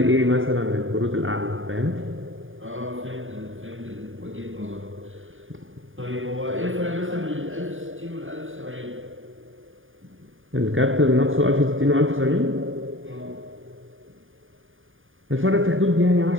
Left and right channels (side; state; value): left; late; 0.59 ms